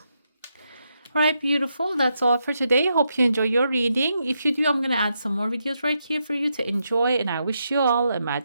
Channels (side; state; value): both; inverted; correlation -0.82